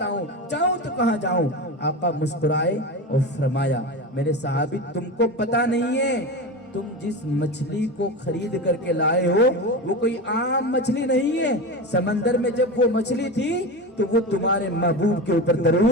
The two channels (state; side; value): normal; both; correlation 0.24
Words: جاؤں تو کہاں جاؤں. آقا مسکرائے اور فرمایا میرے صحابی تم کو پتا نہیں ہے، تم جس مچھلی کو خرید کر کے لائے ہو وہ کوئی عام مچھلی نہیں ہے. سمندر میں جب وہ مچھلی تھی تو وہ تمہارے محبوب کے اوپر